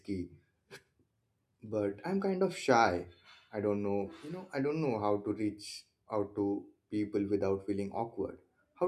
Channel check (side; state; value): both; identical; correlation 1.00